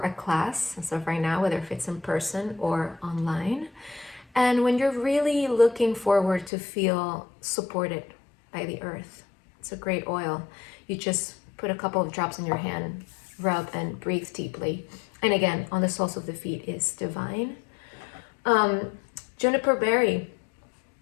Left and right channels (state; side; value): drops out; right; at 6.5 s